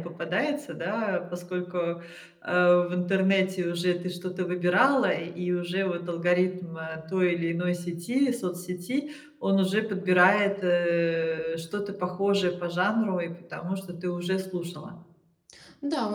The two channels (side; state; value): both; identical; correlation 1.00